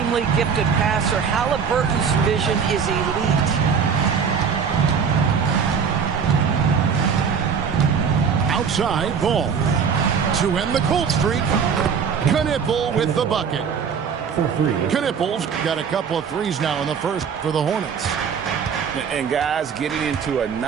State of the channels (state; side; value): quieter; left; 6.6 dB